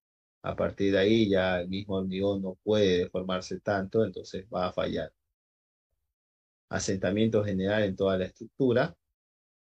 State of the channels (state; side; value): identical; both; correlation 1.00